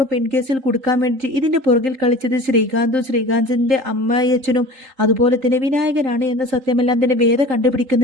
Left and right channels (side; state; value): left; late; 3.8 ms